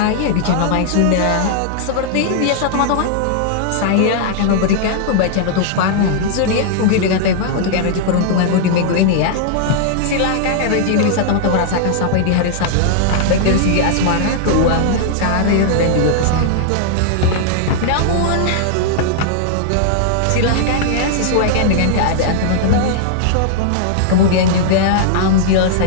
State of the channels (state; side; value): different; both; correlation -0.01